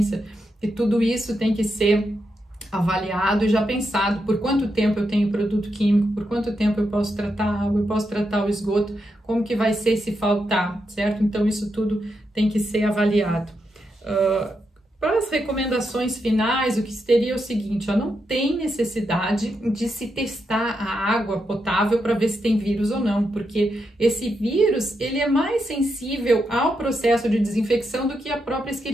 e tudo isso tem que ser avaliado e já pensado por quanto tempo eu tenho produto químico, por quanto tempo eu posso tratar a água, eu posso tratar o esgoto, como que vai ser se faltar, certo? Então isso tudo tem que ser avaliado. Para as recomendações finais, o que seria o seguinte, não tem necessidade de se testar a água potável para ver se tem vírus ou não, porque esse vírus, ele é mais sensível ao processo de desinfecção do que a própria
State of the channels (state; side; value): normal; both; correlation 0.84